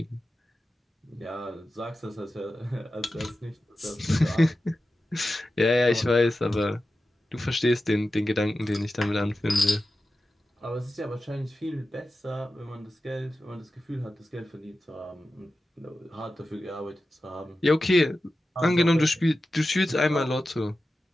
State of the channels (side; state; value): both; normal; correlation 0.93